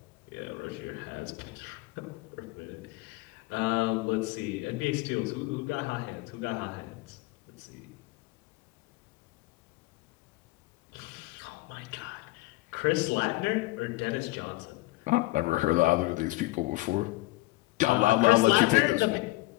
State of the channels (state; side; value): quieter; right; 20.6 dB